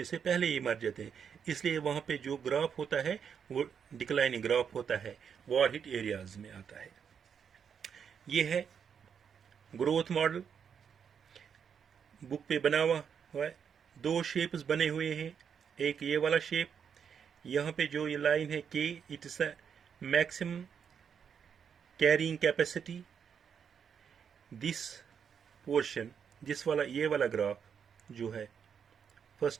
से पहले ही मर जाते हैं, इसलिए वहां पे जो ग्राफ होता है वो डिक्लाइनिंग ग्राफ होता है, वॉर हिट एरियाज में आता है। ये है ग्रोथ मॉडल, बुक पे बना हुआ है, दो शेप्स बने हुए हैं, एक ये वाला शेप, यहाँ पे जो ये लाइन है के, it is a maximum carrying capacity, this portion, जिस वाला ये वाला ग्राफ जो है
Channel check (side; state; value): left; quieter; 7.3 dB